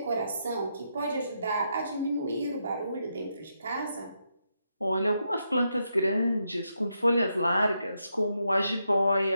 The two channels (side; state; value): both; inverted; correlation -0.82